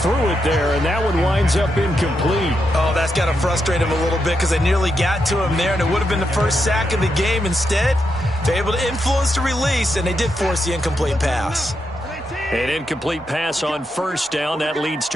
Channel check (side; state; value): both; normal; correlation 0.83